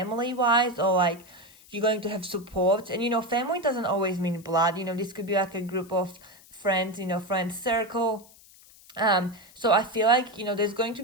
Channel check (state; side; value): noise; left; hiss, 24 dB below the sound